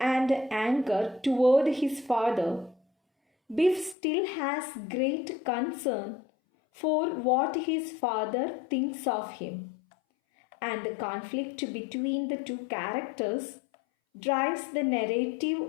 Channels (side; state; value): right; drops out; at 4.0 s